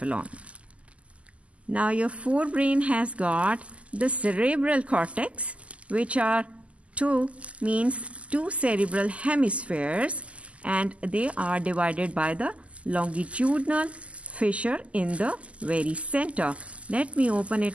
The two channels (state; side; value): late; left; 0.061 ms